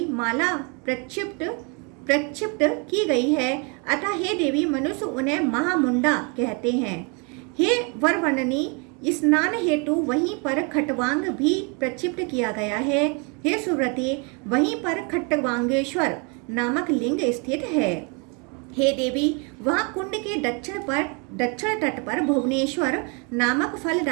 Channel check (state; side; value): quieter; left; 33.7 dB